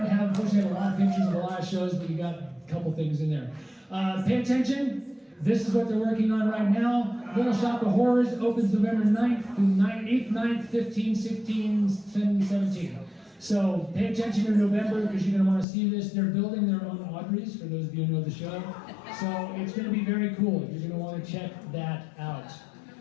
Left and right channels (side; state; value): right; drops out; at 15.7 s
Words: have, unfortunately, a lot of pictures of a lot of shows, but you got a couple things in there. Pay attention. This is what they're working on right now. Little Shop of Horrors opens November 9th through 8th, 9th, 15th, 16th, 17th. So pay attention in November because you're going to want to see this. They're building their own Audreys, for those of you who know the show. So it's going to be very cool. You're going to want to check that out.